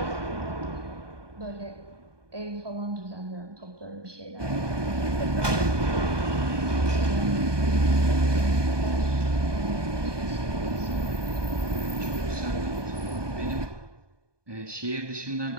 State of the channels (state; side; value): late; left; 1.2 ms